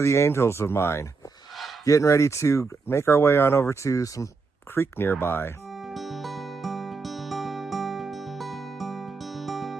the angels of mine, getting ready to make our way on over to some creek nearby.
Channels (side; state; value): left; quieter; 4.5 dB